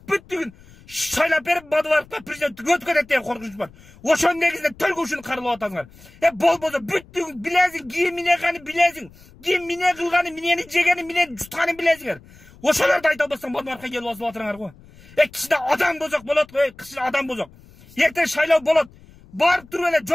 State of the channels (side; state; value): left; noise; rumble, 24 dB below the sound